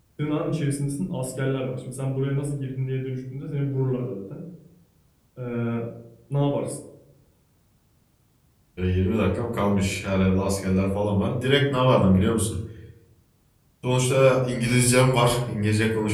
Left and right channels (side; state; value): both; identical; correlation 1.00